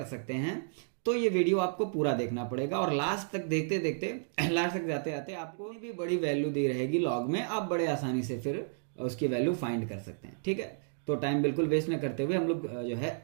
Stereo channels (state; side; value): silent; left; digital silence